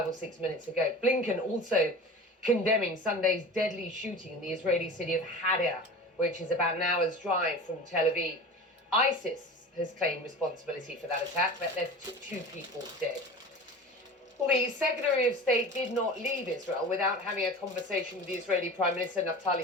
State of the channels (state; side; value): normal; both; correlation 0.34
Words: or 6 minutes ago. Blinken also condemning Sunday's deadly shooting in the Israeli city of Hadar, which is about an hour's drive from Tel Aviv. ISIS has claimed responsibility for that attack, but left 2 people dead. Well, the Secretary of State did not leave Israel without having a conversation with the Israeli Prime Minister